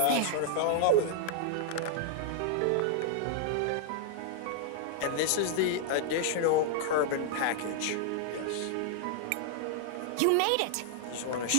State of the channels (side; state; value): both; different; correlation -0.01